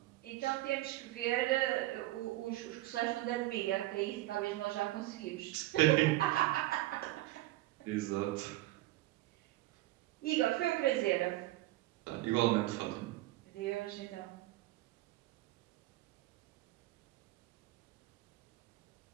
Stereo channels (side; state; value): left; quieter; 17.5 dB